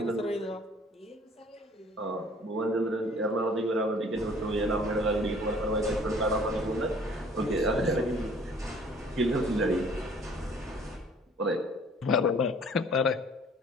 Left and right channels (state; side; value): normal; both; correlation 0.54